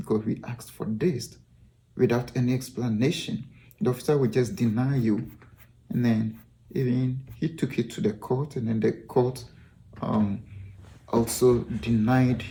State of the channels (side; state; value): both; identical; correlation 1.00